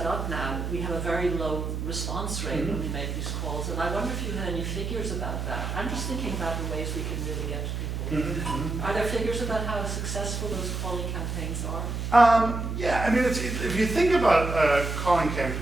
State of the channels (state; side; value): noise; right; hum, 3 dB below the sound